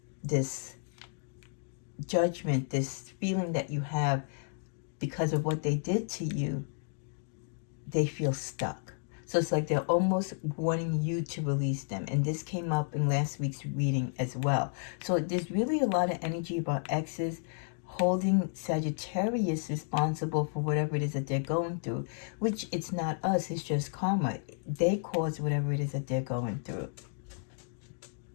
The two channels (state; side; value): silent; right; 56 dB below the other